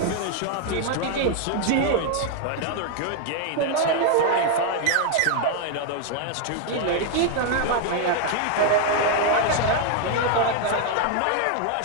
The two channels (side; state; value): both; different; correlation 0.00